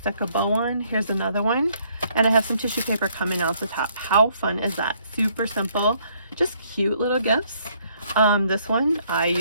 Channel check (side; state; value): both; inverted; correlation -0.67